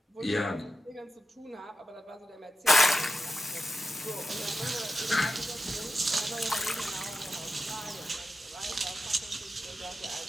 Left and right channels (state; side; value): normal; both; correlation 0.90